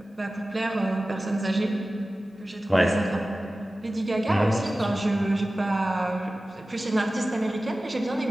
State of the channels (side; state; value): both; normal; correlation 0.96